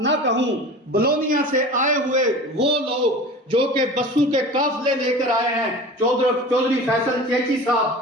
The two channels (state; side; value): normal; both; correlation 0.36